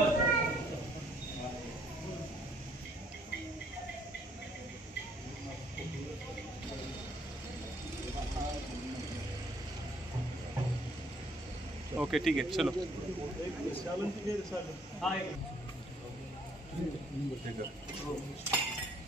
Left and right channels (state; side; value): normal; both; correlation 0.64